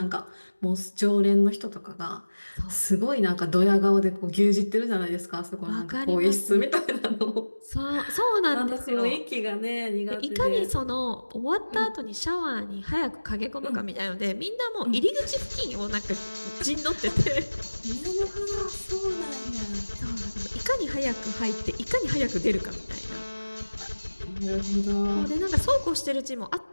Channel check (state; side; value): inverted; both; correlation -1.00